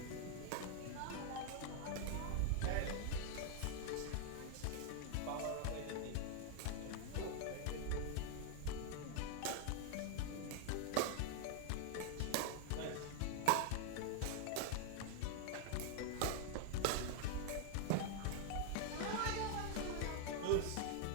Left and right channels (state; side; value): different; both; correlation 0.00